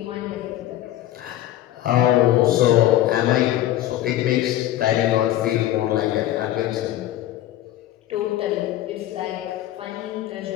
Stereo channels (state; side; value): quieter; right; 13.6 dB